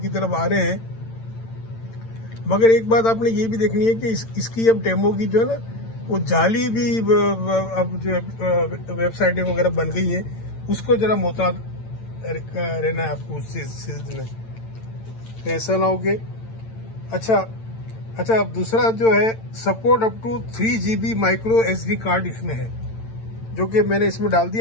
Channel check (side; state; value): right; late; 8.9 ms